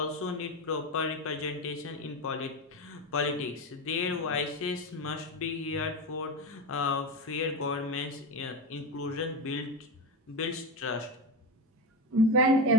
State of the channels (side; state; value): both; normal; correlation 0.17